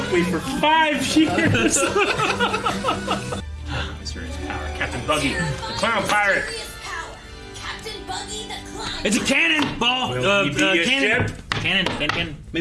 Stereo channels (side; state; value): both; identical; correlation 1.00